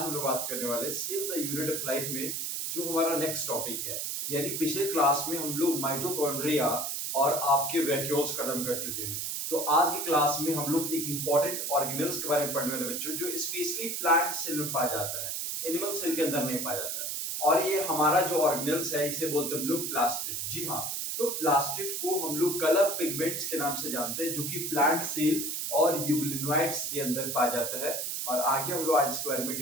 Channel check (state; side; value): noise; right; hiss, 2 dB below the sound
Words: लोग बात करने वाले save the unit of life में जो हमारा नेक्स्ट टॉपिक है। यानी पिछले क्लास में हम लोग माइटोकॉन्ड्रिया और आपके वैक्यूल्स खत्म कर चुके हैं। तो आज की क्लास में हम लोग एक इंपॉर्टेंट ऑर्गेनेल्स के बारे में पढ़ने वाले बच्चों, जो स्पेशली प्लांट सेल में पाया जाता है, एनिमल सेल के अंदर नहीं पाया जाता है। और ये हमारा जो ऑर्गेनेल्स है इसे बोलते हैं हम लोग प्लास्टिड। जी हाँ, तो प्लास्टिड को हम लोग कलर पिगमेंट्स के नाम से जानते हैं, जो कि प्लांट सेल और यूग्लिनोइड्स के अंदर पाया जाता है। और आगे हम लोग आज इसके बारे में